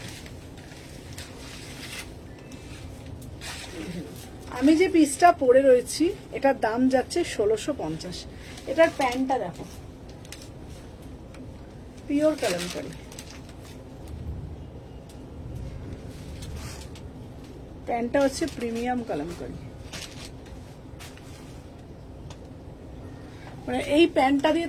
আমি যে পিসটা পরে রয়েছি এটার দাম যাচ্ছে 1650। এটার প্যান্টটা দেখো, পিওর কালামকারি। প্যান্টটা হচ্ছে প্রিমিয়াম কালামকারি। মানে এই প্যান্টটা দিয়ে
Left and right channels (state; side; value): identical; both; correlation 1.00